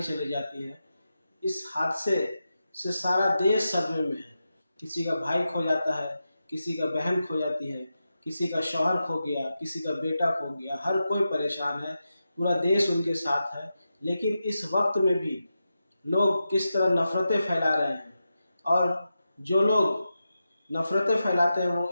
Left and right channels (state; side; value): inverted; both; correlation -0.90